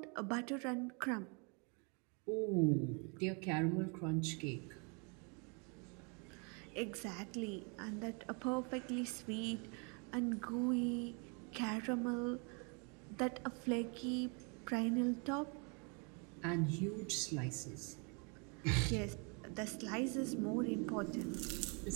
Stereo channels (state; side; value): quieter; left; 34.7 dB